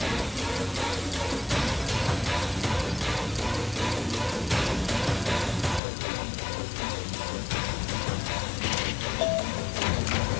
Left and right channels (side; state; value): right; drops out; at 5.8 s